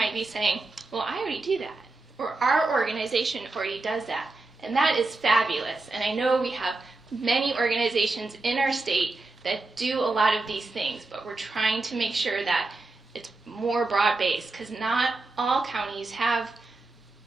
be saying, well, I already do that, or our organization already does that. And that is fabulous. And I know we have many organizations in our state that do a lot of these things, but we're trying to make sure that it's more broad-based, because not all counties have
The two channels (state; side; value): quieter; left; 3.3 dB